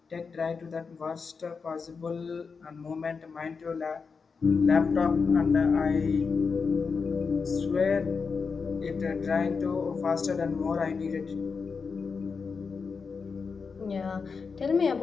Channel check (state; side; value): quieter; right; 5.2 dB